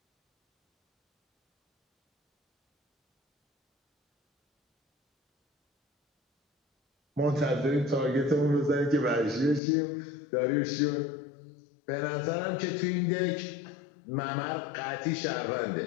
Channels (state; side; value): drops out; right; at 9.6 s